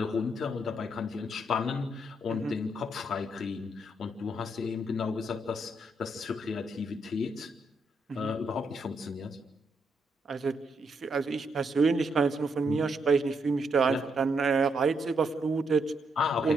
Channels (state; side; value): normal; both; correlation 0.78